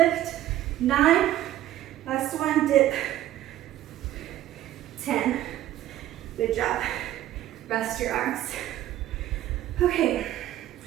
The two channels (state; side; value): quieter; left; 13.4 dB